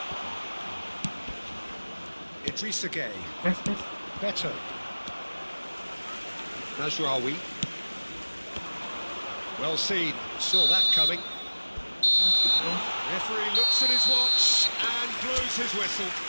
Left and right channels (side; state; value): both; inverted; correlation -1.00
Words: Idrissa Gueye. Tes. Better. Nasraoui. Well seen. Saw that coming. Referee looks at his watch and blows his whistle.